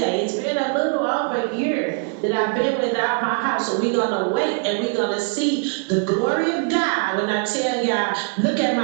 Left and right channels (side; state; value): left; quieter; 39.6 dB